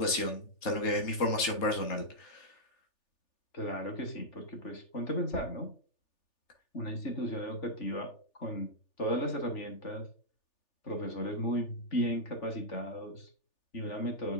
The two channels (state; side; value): late; right; 3.4 ms